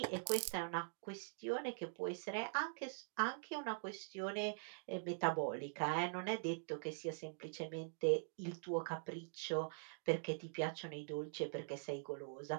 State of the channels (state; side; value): silent; left; digital silence